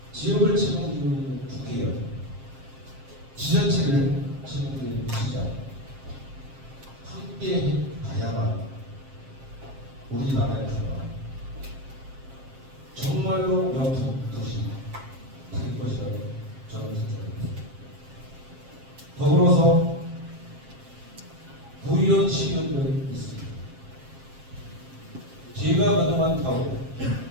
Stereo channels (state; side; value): late; left; 7.5 ms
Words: 지역을 책임지고 있는 국회의원, 지자체를 책임지고 있는 시장 함께 가야만 우리나라에서 정말로 명품 도시 될 것이라고 저는 생각합니다. 더불어서 부의원 시의원들이 있습니다. 제가 그동안 봐오고